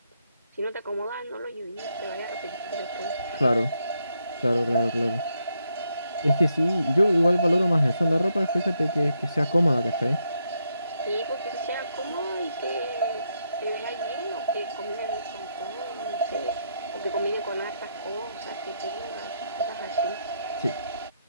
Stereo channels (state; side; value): inverted; both; correlation -0.79